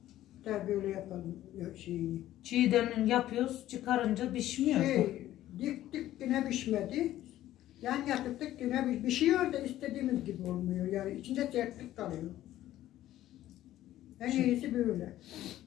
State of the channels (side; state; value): right; quieter; 13.7 dB